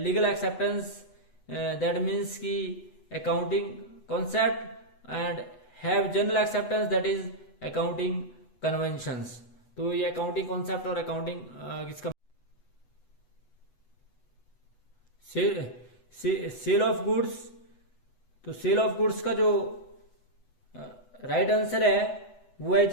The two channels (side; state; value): right; late; 8.1 ms